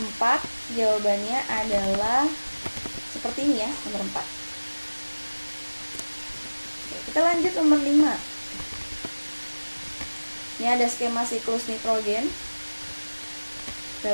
jawabannya adalah seperti ini ya, nomor 4. Oke, kita lanjut nomor 5. Ini ada skema siklus nitrogen. Kita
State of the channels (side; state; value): both; inverted; correlation -1.00